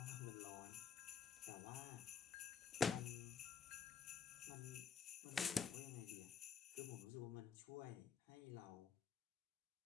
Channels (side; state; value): right; quieter; 6.5 dB